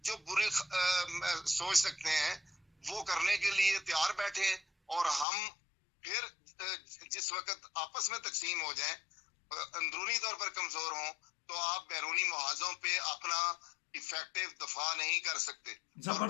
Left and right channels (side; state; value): right; drops out; at 5.2 s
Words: جو بری سوچ سکتے ہیں وہ کرنے کے لیے تیار بیٹھے، اور ہم پھر جس وقت آپس میں تقسیم ہو جائیں، اندرونی طور پر کمزور ہوں، تو آپ بیرونی محاذوں پہ اپنا افیکٹو دفاع نہیں کر سکتے. اور